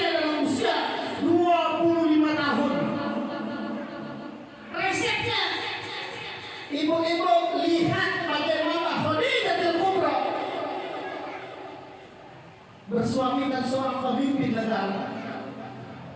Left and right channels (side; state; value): both; identical; correlation 1.00